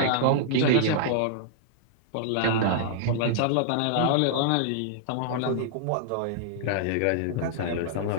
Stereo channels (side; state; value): both; different; correlation -0.01